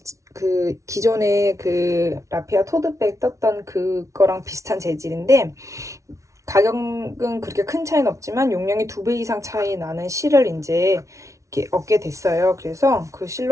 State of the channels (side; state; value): left; late; 0.15 ms